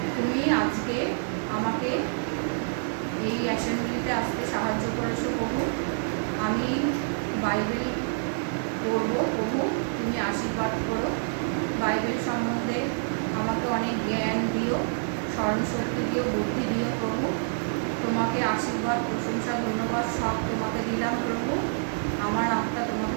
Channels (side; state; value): left; silent; 59 dB below the other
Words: তুমি আজকে আমাকে এই অ্যাসেম্বলিতে আসতে সাহায্য করেছো প্রভু। আমি বাইবেল পড়ব প্রভু, তুমি আশীর্বাদ করো। বাইবেল সম্বন্ধে আমাকে অনেক জ্ঞান দিও, স্মরণশক্তি দিও, বুদ্ধি দিও প্রভু। তোমাকে আশীর্বাদ, প্রশংসা, ধন্যবাদ সব তোমাকে দিলাম প্রভু। আমার আত্মা